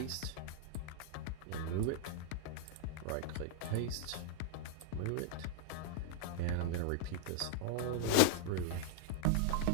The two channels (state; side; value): different; both; correlation -0.01